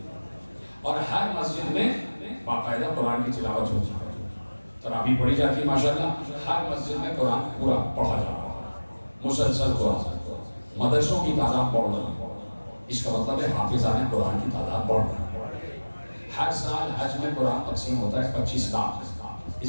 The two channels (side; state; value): both; inverted; correlation -1.00